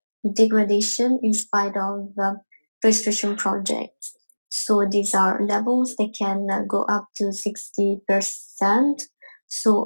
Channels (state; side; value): inverted; both; correlation -1.00